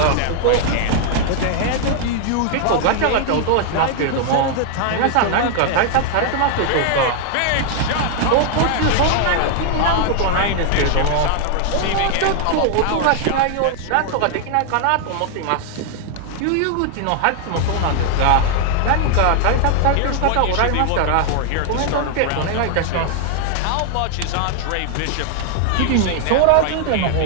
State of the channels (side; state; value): both; different; correlation 0.00